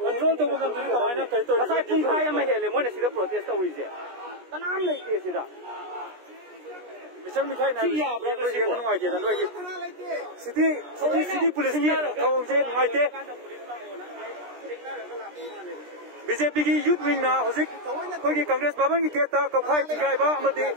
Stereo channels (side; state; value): left; late; 17 ms